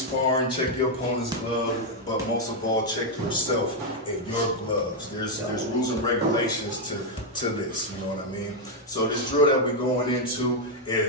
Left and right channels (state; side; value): normal; both; correlation 0.01